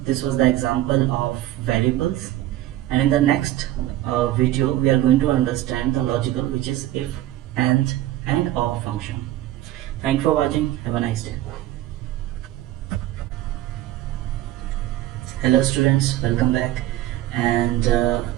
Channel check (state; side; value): quieter; left; 14.5 dB